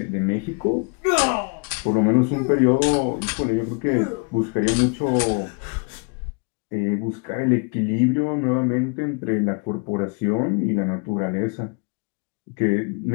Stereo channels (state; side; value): quieter; right; 36.4 dB